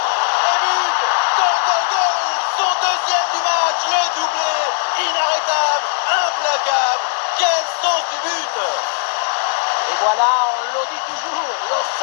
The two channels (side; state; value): right; silent; digital silence